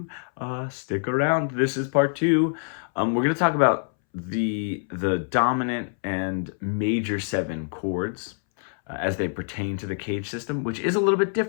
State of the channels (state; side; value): silent; right; 61 dB below the other